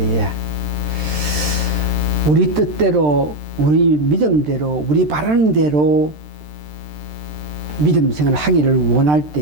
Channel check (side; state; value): left; late; 13 ms